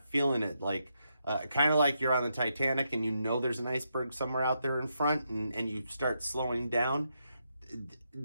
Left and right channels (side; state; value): both; inverted; correlation -0.82